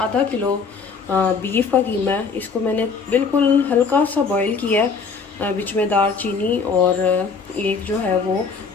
किलो बीफ का कीमा है। इसको मैंने बिल्कुल हल्का सा बॉईल किया है, बीच में दालचीनी और एक जो है वो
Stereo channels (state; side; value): quieter; right; 5.1 dB